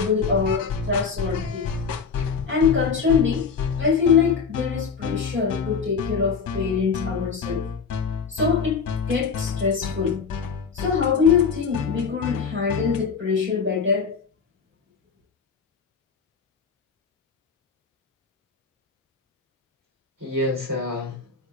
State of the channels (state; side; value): quieter; right; 5.7 dB